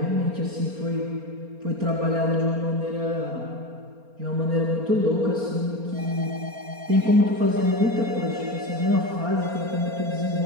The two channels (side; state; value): left; late; 4.3 ms